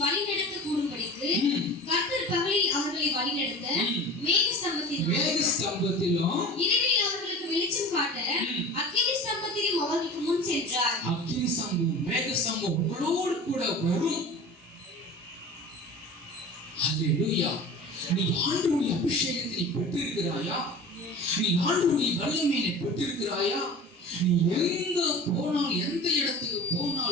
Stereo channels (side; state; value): both; normal; correlation 0.37